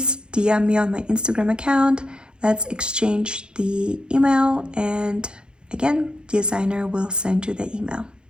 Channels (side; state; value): left; late; 0.049 ms